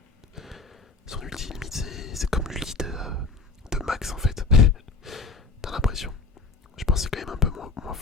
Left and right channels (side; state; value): right; quieter; 4.2 dB